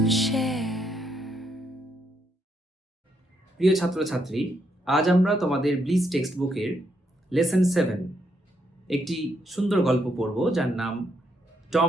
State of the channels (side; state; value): both; normal; correlation 0.76